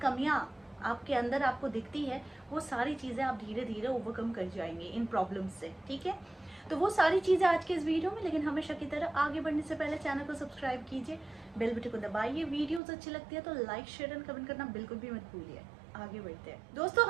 कमियाँ आपके अंदर आपको दिखती है, वो सारी चीज़ें आप धीरे धीरे ओवरकम कर जाएंगे इन प्रॉब्लम्स से। ठीक है, तो वो सारी चीज़ें आज के इस वीडियो में। लेकिन हमेशा की तरह आगे बढ़ने से पहले चैनल को सब्सक्राइब कीजिए, बेल बटन को दबाइए। वीडियोस अच्छी लगती है तो लाइक, शेयर एंड कमेंट करना बिल्कुल भी मत भूलिए। आगे बढ़ते हैं दोस्तों।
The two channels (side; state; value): left; drops out; at 12.8 s